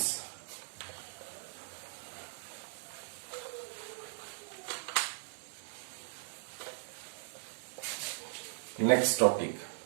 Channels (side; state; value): left; silent; digital silence